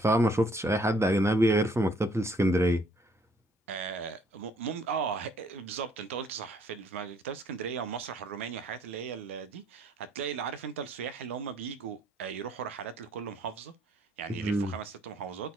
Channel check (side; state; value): both; normal; correlation 0.63